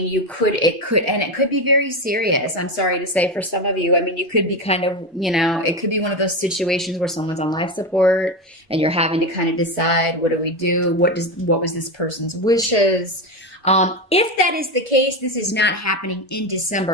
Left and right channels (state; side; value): normal; both; correlation 0.16